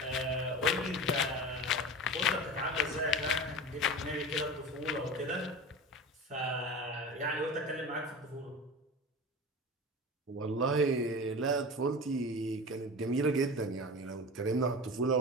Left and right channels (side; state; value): both; normal; correlation 0.31